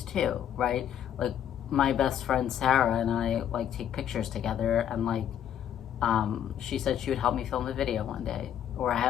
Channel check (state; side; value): quieter; right; 9.9 dB